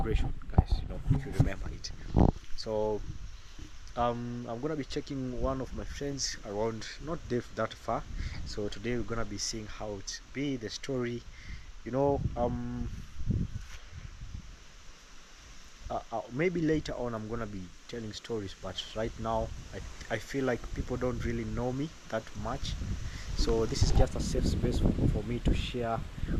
guys, if you remember it. So I'm gonna be checking one of my friends around, not that far. So today we're gonna be seeing how it be the story, maybe later on I'm gonna be telling stories, but right now I feel like people don't really know me that much, so this is just a safe space for me to share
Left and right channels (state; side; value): identical; both; correlation 1.00